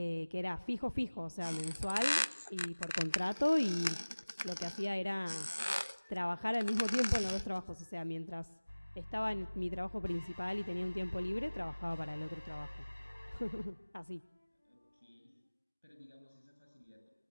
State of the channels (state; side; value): inverted; both; correlation -1.00